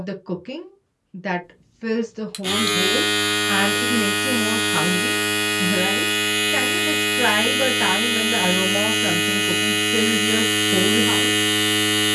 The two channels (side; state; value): both; identical; correlation 1.00